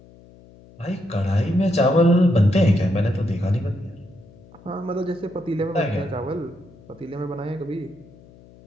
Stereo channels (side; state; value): left; noise; hum, 24 dB below the sound